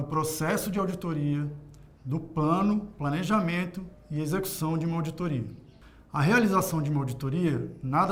processo de auditoria, do plano, planejamento e execução de uma auditoria. A realização de uma auditoria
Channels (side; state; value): both; identical; correlation 1.00